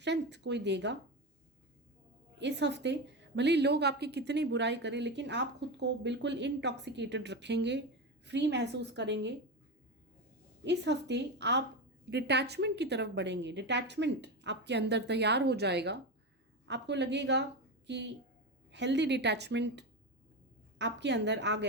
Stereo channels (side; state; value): both; normal; correlation 0.17